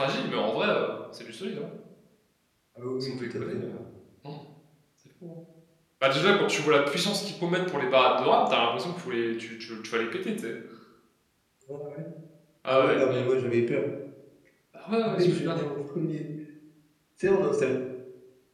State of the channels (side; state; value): both; identical; correlation 1.00